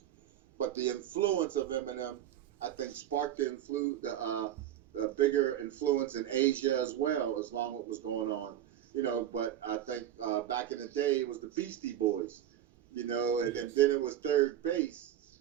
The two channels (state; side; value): quieter; left; 11.3 dB